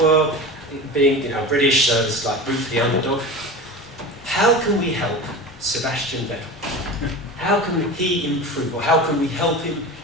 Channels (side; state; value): both; normal; correlation 0.30